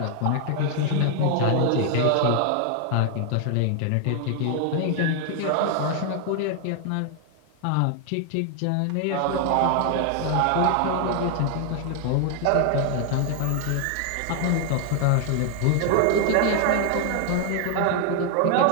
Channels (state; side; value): different; both; correlation 0.00